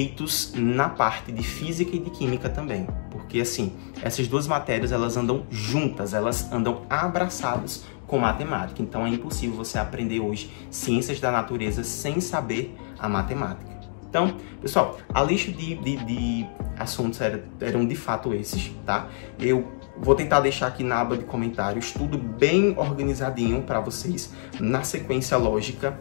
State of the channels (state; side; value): silent; right; digital silence